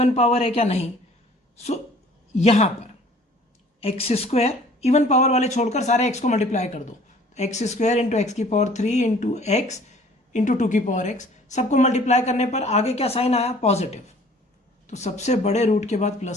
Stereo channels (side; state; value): both; normal; correlation 0.52